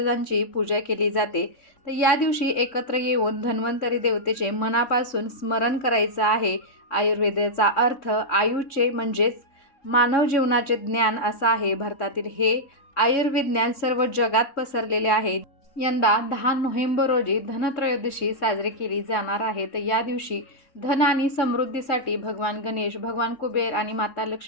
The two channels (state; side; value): late; right; 3.6 ms